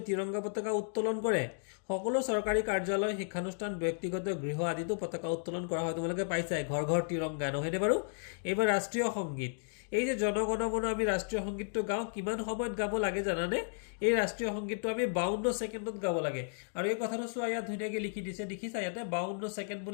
তিৰংগা পতাকা উত্তোলন কৰে সকলো চৰকাৰী কাৰ্যালয় শিক্ষানুষ্ঠান ব্যক্তিগত গৃহ আদিতো পতাকা উত্তোলন কৰা হয় তোমালোকে পাইছাই ঘৰ ঘৰ তিৰংগা নহয়নে বাৰু এইবাৰ ৰাষ্ট্ৰীয় সংগীত এই যে জনগণমন আমি ৰাষ্ট্ৰীয় সংগীতটো গাওঁ কিমান সময়ত গাব লাগে জানানে এই ৰাষ্ট্ৰীয় সংগীতটো আমি 52 ছেকেণ্ডত গাব লাগে আৰু এই কথাটো চোৱা ইয়াত ধুনীয়াকৈ লিখি দিছে দেখিছা ইয়াতে 52 ছেকেণ্ড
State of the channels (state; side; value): silent; right; digital silence